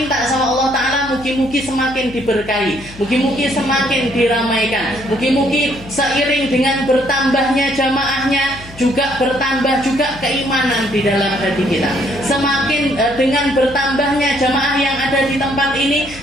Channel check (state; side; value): noise; left; hum, 18 dB below the sound